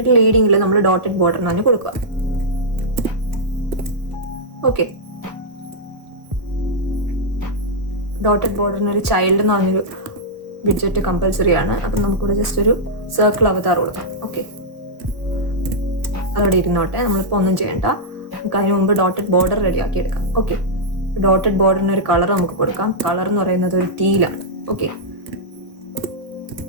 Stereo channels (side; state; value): left; late; 1.4 ms